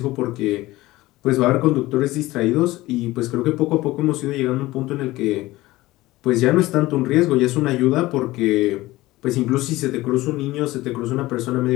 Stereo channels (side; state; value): right; quieter; 18.3 dB